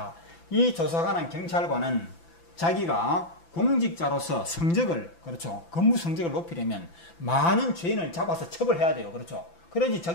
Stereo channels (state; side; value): late; right; 5.9 ms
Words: 이 조사관은 경찰관은 자기가 공직자로서 성적을, 그렇죠, 근무 성적을 높이려면 많은 죄인을 잡아서 처벌해야 돼요. 그렇죠. 그래야지